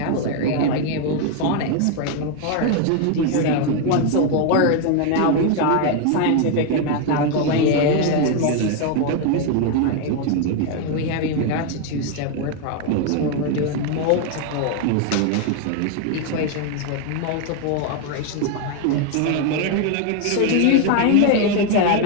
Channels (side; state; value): both; different; correlation 0.01